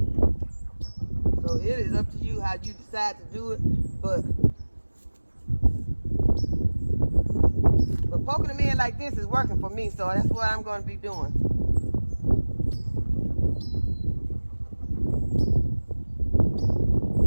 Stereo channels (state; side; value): inverted; both; correlation -1.00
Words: So it is up to you how you decide to do it, but poking them in like this is working for me, so that's what I'm going to be doing.